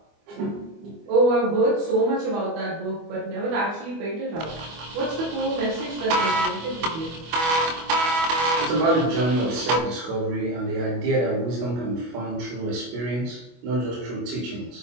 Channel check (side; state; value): left; late; 25 ms